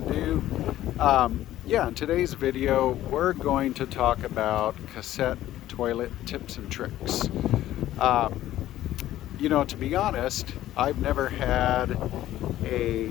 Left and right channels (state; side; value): quieter; right; 13.8 dB